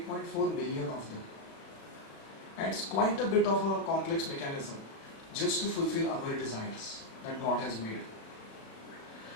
billion of them. And it's quite a bit of a complex mechanism just to fulfill our desires that God has made.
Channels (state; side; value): late; right; 36 ms